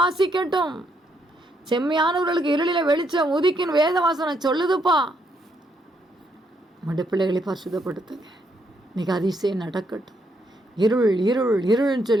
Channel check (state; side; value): normal; both; correlation 0.75